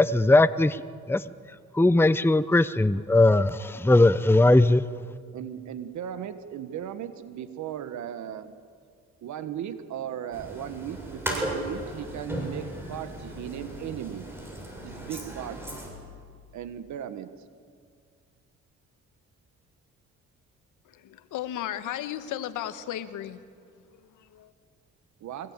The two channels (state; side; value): normal; both; correlation 0.82